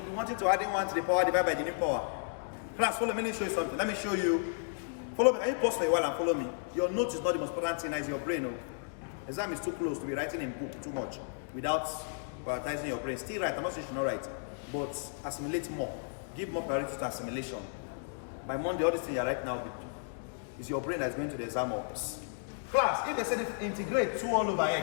be wanting to add in 1 to the power divided by the new power. Class, follow me, let me show you something. Let me show you. Follow me. Can you pause for a while and follow me? Your note is not the most important thing, it's your brain. Oh. Exam is too close to be writing in book too much without prioritizing your brain. Still write, I'm not saying you should not write, but assimilate more. Give more priority to assimilation. By Monday, all this thing you're right now is your brain that's going to the exam box. Class, if they said integrate 2 all over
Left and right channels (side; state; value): right; silent; digital silence